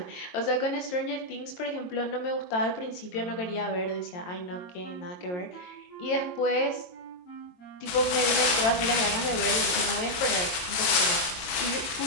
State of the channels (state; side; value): late; right; 23 ms